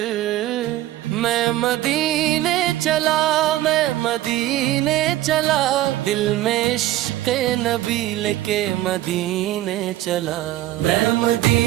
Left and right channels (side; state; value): left; quieter; 14.9 dB